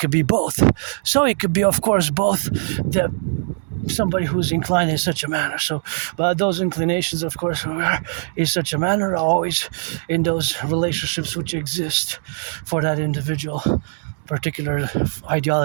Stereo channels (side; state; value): left; silent; digital silence